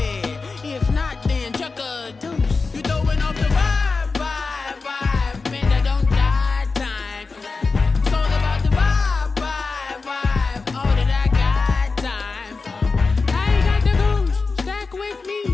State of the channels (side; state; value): right; quieter; 4.2 dB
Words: If not, then chuck a deuce. You throwing off the vibe, man, I don't got time. It's all about the vibe, all that I got time. I ain't got the goose, stack with me.